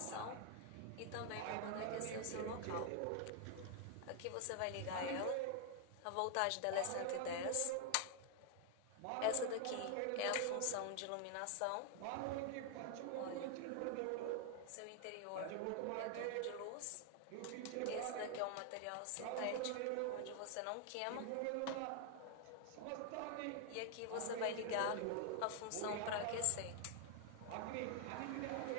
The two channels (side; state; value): both; different; correlation 0.00